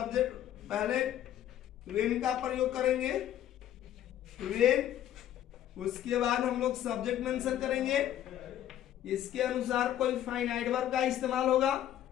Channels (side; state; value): right; quieter; 11.7 dB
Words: पहले वेन का प्रयोग करेंगे, वेन, उसके बाद हम लोग सब्जेक्ट मेंशन करेंगे, इसके अनुसार कोई फाइनाइट वर्ब का इस्तेमाल होगा,